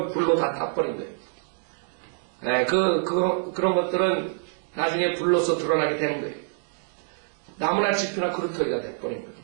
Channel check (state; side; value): silent; left; digital silence